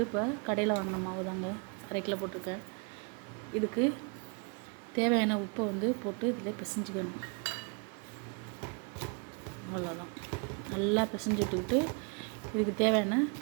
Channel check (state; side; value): quieter; left; 35.7 dB